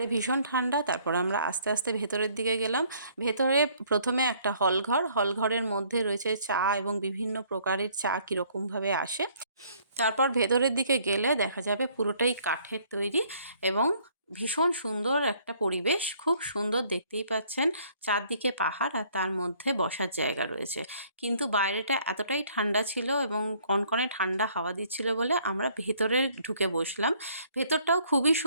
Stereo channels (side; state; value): both; inverted; correlation -0.62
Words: ভীষণ ঠান্ডা। তারপর আমরা আস্তে আস্তে ভেতরের দিকে গেলাম। ভেতরে প্রথমে একটা হলঘরের মধ্যে রয়েছে চা এবং বিভিন্ন প্রকারের চা কীরকমভাবে আসে। তারপর ভেতরের দিকে গেলে দেখা যাবে পুরোটাই কাঠের তৈরি এবং ভীষণ সুন্দর একটা পরিবেশ। খুব সুন্দর, দেখতেই পাচ্ছেন চারদিকে পাহাড় আর তার মধ্যে বসার জায়গা রয়েছে। কিন্তু বাইরেটা এতটাই ঠান্ডা ছিল এবং কনকনে ঠান্ডা হাওয়া দিচ্ছিল বলে আমরা ভেতরে ঢুকে বসলাম। ভেতরটাও খুবই